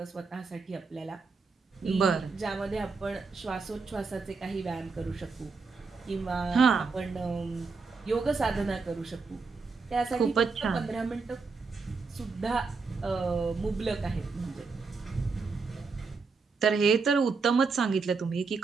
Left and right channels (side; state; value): left; quieter; 4.6 dB